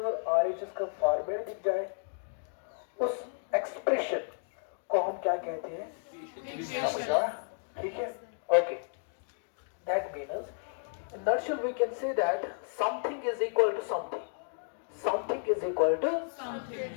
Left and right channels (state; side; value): silent; right; digital silence